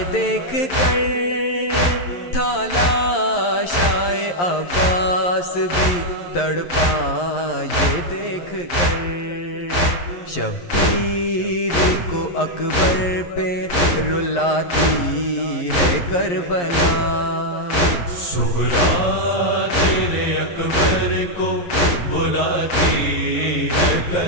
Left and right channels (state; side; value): late; right; 11 ms